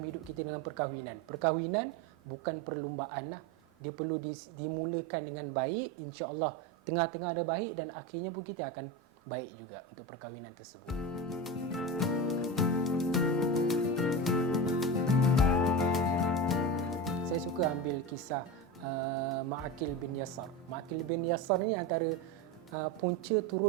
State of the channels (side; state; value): both; normal; correlation 0.22